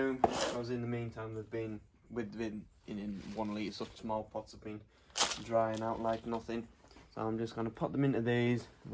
Because in the meantime they've been in 1 litre such small pots have been drying out like nothing. So I'm just gonna put them into these,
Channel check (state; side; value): identical; both; correlation 1.00